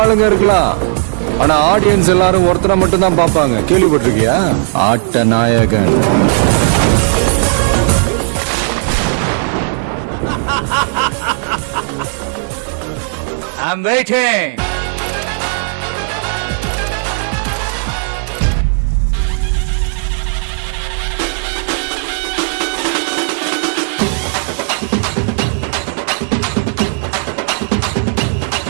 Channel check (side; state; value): left; silent; digital silence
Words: இருக்கலாம், ஆனா ஆடியன்ஸ் எல்லாரும் ஒருத்தரை மட்டும் தான் பாப்பாங்க. கேள்விப்பட்டிருக்கியா? ஆட்ட நாயகன். I'm waiting.